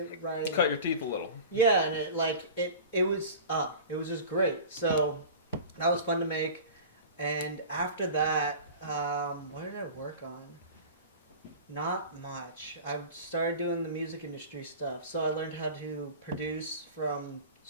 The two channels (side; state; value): both; inverted; correlation -0.37